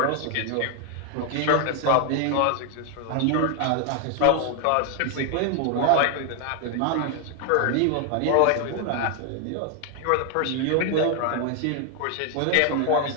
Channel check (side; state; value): both; different; correlation 0.00